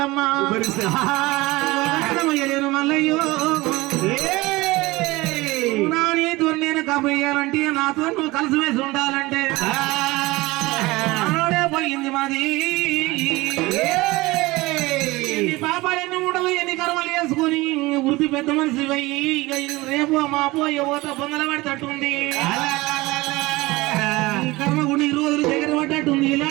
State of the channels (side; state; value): left; quieter; 21.0 dB